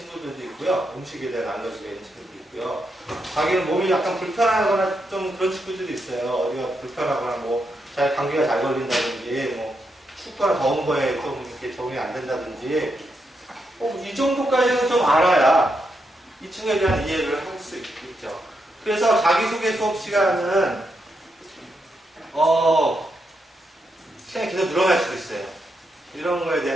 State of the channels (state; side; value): normal; both; correlation 0.82